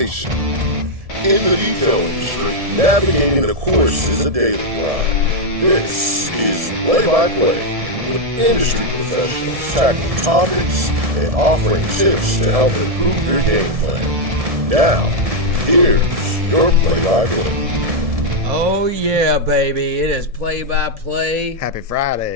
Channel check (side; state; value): left; late; 1.7 ms